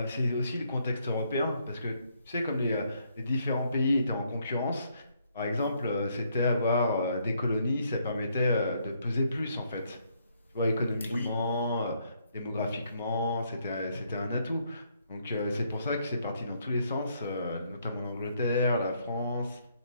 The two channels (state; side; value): inverted; both; correlation -0.71